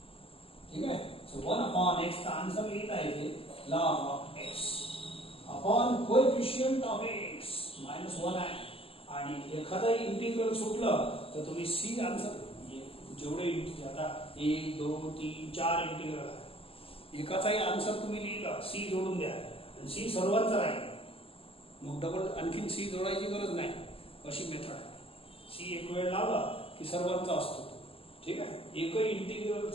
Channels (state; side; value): late; right; 0.27 ms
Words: ठीक आहे, सो 1/x चा आन्सर लिहिता येते log of x upon coefficient of x -1 आहे. आणि एखादाही इंटिग्रल सुटलं तर तुम्ही सी आन्सर, जेवढे आता 1 2 3 4 इंटिग्रल आहे, एकाचाही आन्सर तुम्ही लिहिला, सी जोडून द्या, सी सर्वांचा राहील. मग डबल आणखीन सी जोडायची गरज नाही, अशी मेथड आहे. सी एक वेळ लावला की सर्वांचा असतो तो. ठीक आहे, एकही